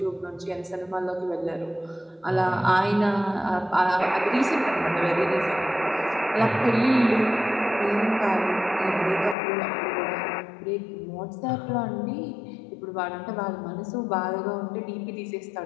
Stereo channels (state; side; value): drops out; right; at 9.3 s